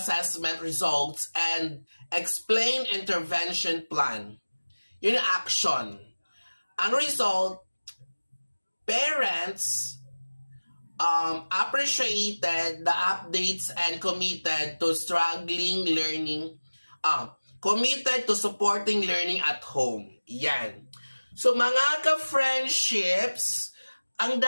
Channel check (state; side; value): inverted; both; correlation -1.00